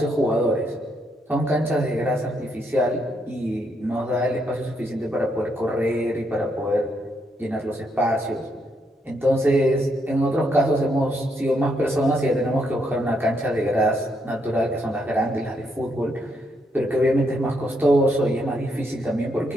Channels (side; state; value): both; normal; correlation 0.76